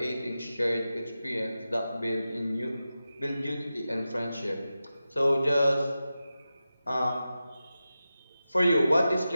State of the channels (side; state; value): both; inverted; correlation -0.93